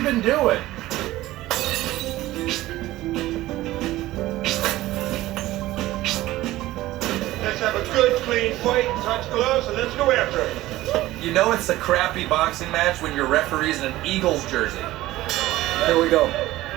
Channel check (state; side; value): quieter; left; 16.5 dB